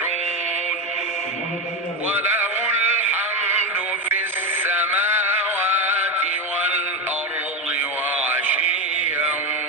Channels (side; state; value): both; normal; correlation 0.13